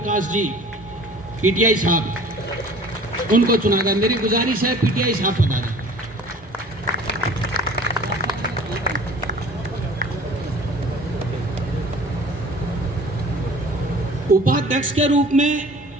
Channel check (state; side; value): normal; both; correlation 0.46